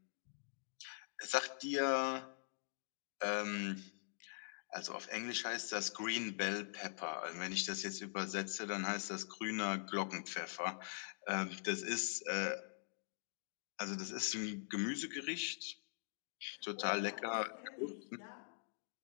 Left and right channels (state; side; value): silent; right; digital silence